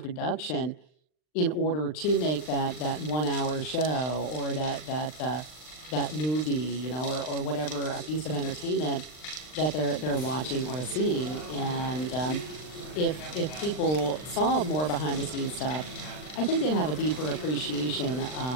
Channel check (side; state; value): right; late; 39 ms